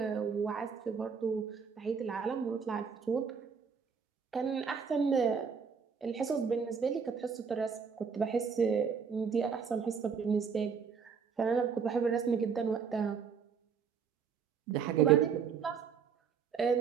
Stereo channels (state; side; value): quieter; left; 6.3 dB